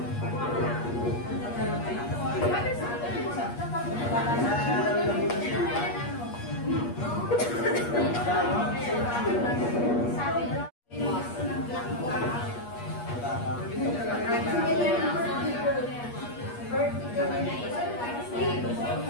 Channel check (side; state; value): right; late; 8.4 ms